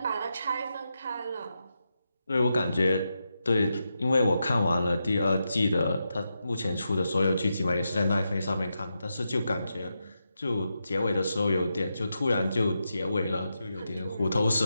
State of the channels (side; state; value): both; inverted; correlation -0.87